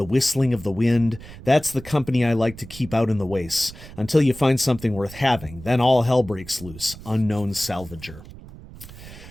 whistling of the wind. That's the company I like to keep out in the wastes until you find something worth having. Then all hell breaks loose. Unknown Salvager.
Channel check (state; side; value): noise; right; rumble, 16 dB below the sound